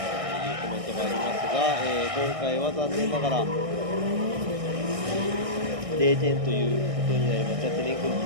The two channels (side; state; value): left; late; 1.6 ms